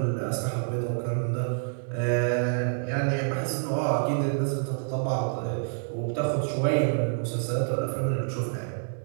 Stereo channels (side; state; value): left; silent; digital silence